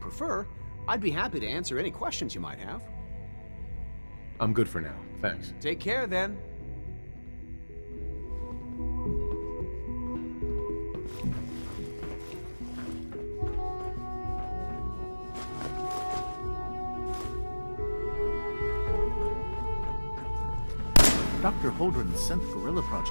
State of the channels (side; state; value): both; inverted; correlation -1.00